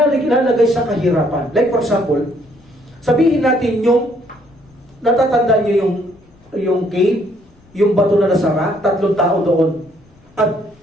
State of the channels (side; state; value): left; noise; rumble, 30 dB below the sound